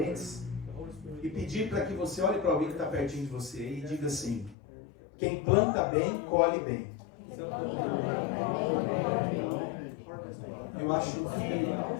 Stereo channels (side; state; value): right; drops out; at 4.5 s